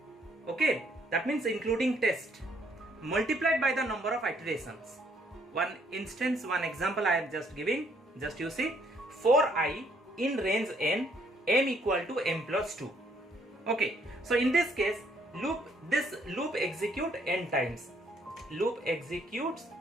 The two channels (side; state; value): both; normal; correlation 0.68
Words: Okay, that means including test, multiplied by the number of iterations. One example I am just giving. Just you see, for I in range n, m equal to m plus 2. Okay, so in this case, this loop execute n times. Loop executes